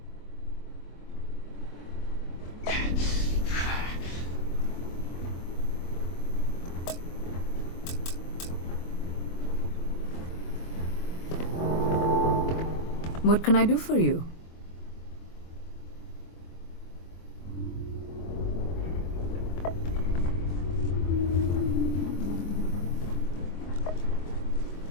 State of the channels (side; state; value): right; late; 24 ms